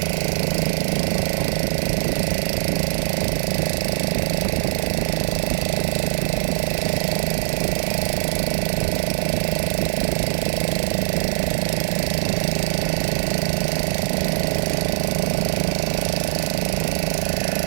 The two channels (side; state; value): left; silent; digital silence